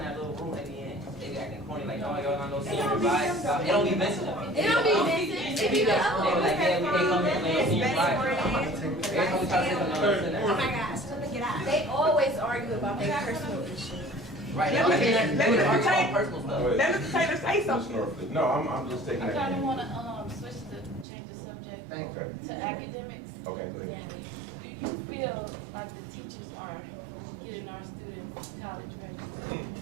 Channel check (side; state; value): left; drops out; at 21.1 s